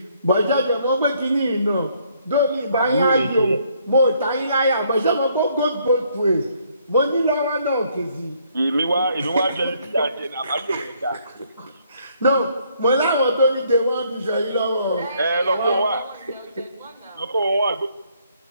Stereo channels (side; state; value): both; inverted; correlation -0.68